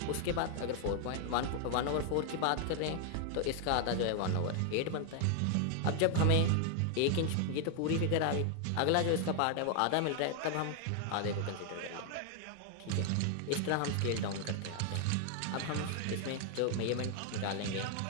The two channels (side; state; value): both; different; correlation 0.00